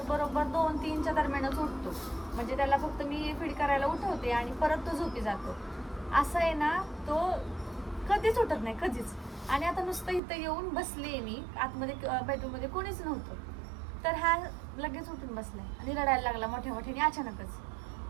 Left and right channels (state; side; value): drops out; left; at 10.2 s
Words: बरोबर 2-3च्या दरम्यानच उठतो. म्हणजे त्याला फक्त मी फीड करायला उठवते आणि परत तो झोपी जातो. असं आहे ना, तो कधीच उठत नाही कधीच. आणि आता नुसतं इथं येऊन बसले मी, आतमध्ये बेडरूममध्ये कोणीच नव्हतं. तर हा लगेच उठून बसलाय आणि रडायला लागला मोठ्या मोठ्याने अचानकच,